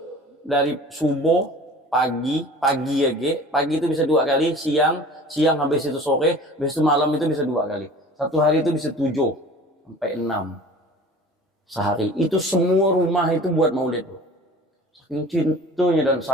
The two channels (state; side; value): normal; both; correlation 0.43